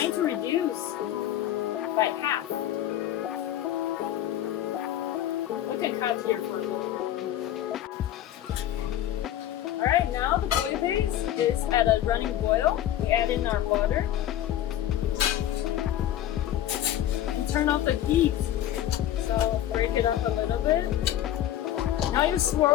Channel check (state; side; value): quieter; right; 12.1 dB